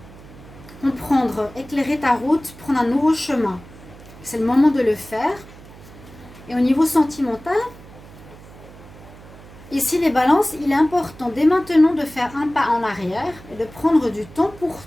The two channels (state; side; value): noise; right; hum, 19 dB below the sound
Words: Comprendre, éclairer ta route, prendre un nouveau chemin. C'est le moment de le faire. Et au niveau sentimental, ici, les balances, il est important dès maintenant de faire un pas en arrière et de prendre du temps pour